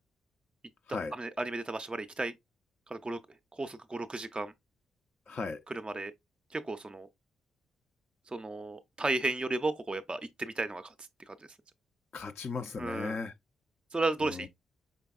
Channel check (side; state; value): both; normal; correlation 0.87